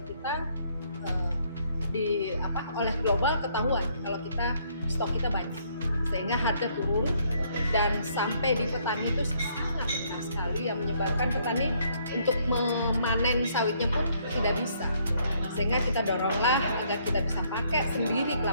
kita oleh global ketahuan kalau stok kita banyak, sehingga harga turun dan sampai di petani itu sangat rendah sekali yang menyebabkan petani untuk memanen sawitnya pun tidak bisa. Sehingga kita doronglah agar kita bisa pakai sendiri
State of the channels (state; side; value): inverted; both; correlation -0.67